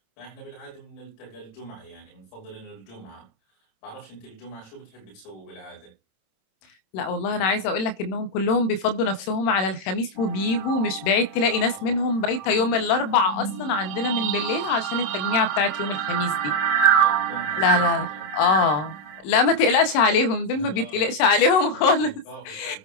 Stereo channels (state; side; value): late; right; 26 ms